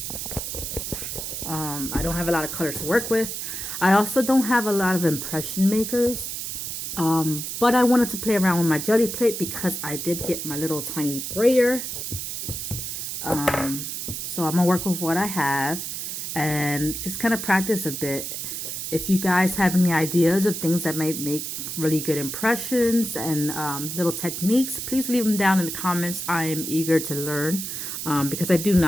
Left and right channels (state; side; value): noise; right; hiss, 5 dB below the sound